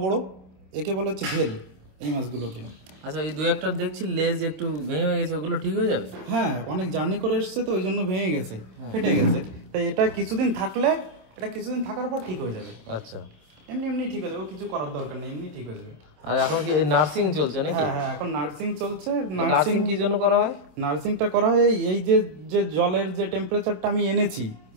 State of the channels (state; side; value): late; left; 26 ms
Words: বড়, একে বলা হচ্ছে ভেল এই মাছগুলোকে। আচ্ছা, এই দুই একটা দেখছি লেজ একটু ভেঙে গেছে, ওগুলো ঠিক হয়ে যাবে? হ্যাঁ, অনেক জার্নি করে এসছে তো ওই জন্য ভেঙে গেছে, ফেটে গেছে। তাই এটা কিছুদিন থাকলে, এটা কিছুদিন থাকার পর ঠিক হয়ে যাবে। আচ্ছা, এমনি এমনি ঠিক হয়ে যাবে, কিছু করার দরকার নেই, এমনি ঠিক হয়ে যাবে। আর এখন কি নার্সিং চলছে নাকি? হ্যাঁ হ্যাঁ, এখন নার্সিং চলছে। নার্সিং কি জন্য করা হয়? নার্সিংটা করা হয় এই যে যে জলের যে টেম্পারেচারটা আমি এনেছি,